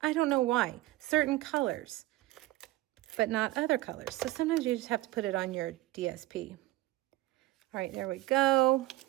don't know why. Certain colors, but not other colors. So sometimes you just have to put it on your DSP. All right, there we go.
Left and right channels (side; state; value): left; quieter; 17.6 dB